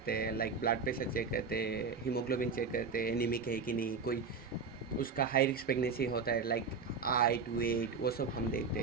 हैं। लाइक ब्लड प्रेशर चेक करते हैं, हीमोग्लोबिन चेक करते हैं, एनीमिक है कि नहीं, कोई उसका हाई रिस्क प्रेगनेंसी होता है, लाइक हाइट, वेट, वो सब हम देखते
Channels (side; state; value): left; quieter; 5.1 dB